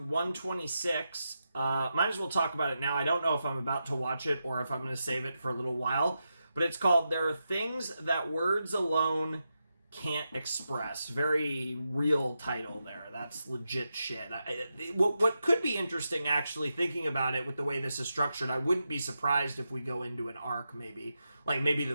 126 Might as well talk about it now. I don't know if I'm about to watch it or if I'm going to save it for a little while. But it's called There Are Things That Words Alone Can't Express. Very real title there. That's legit shit. What could be interesting, actually, thinking about it with the way this is structured, I wouldn't be surprised if we go into an arc, maybe. Like, maybe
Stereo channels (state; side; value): inverted; both; correlation -0.88